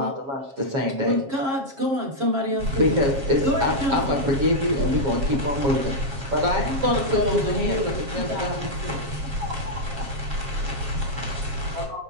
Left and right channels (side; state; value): left; late; 7.4 ms